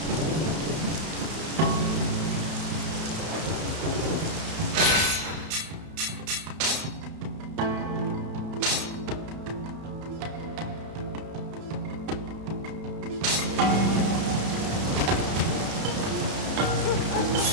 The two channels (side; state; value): left; late; 32 ms